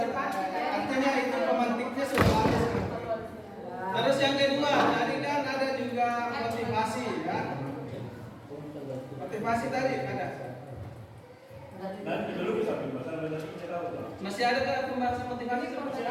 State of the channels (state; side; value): identical; both; correlation 1.00